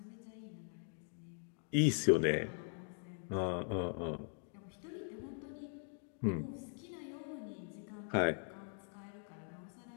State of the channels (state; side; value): silent; right; 50 dB below the other